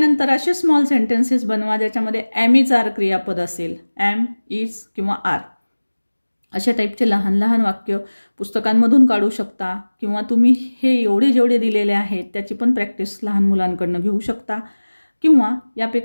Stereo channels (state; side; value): inverted; both; correlation -1.00